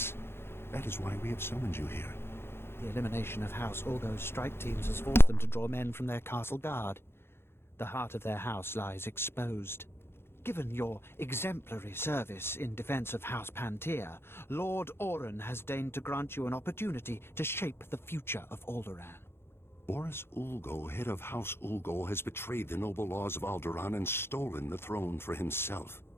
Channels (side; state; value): right; late; 0.11 ms